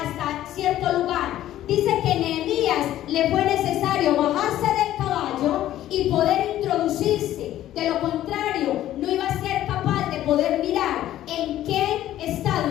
hasta cierto lugar. Dice que Nehemías le fue necesario bajarse del caballo y poder introducirse. De lo contrario, no iba a ser capaz de poder mirar en qué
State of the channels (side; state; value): right; quieter; 13.1 dB